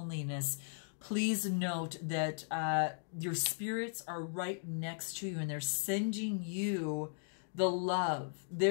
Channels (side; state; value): right; silent; digital silence